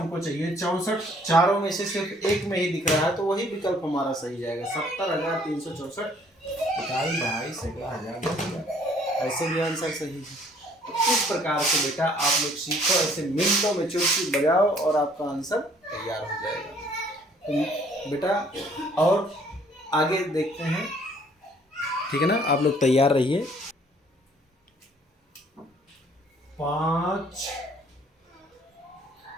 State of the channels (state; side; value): normal; both; correlation 0.60